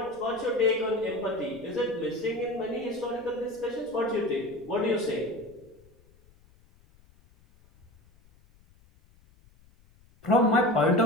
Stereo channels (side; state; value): left; noise; rumble, 29 dB below the sound